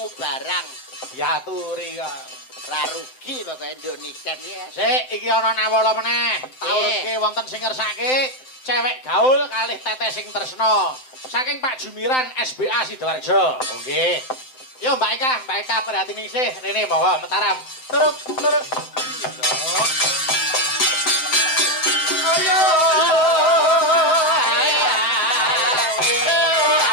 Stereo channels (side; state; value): right; late; 7.8 ms